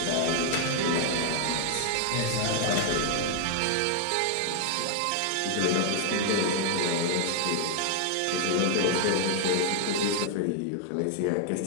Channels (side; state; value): both; different; correlation 0.00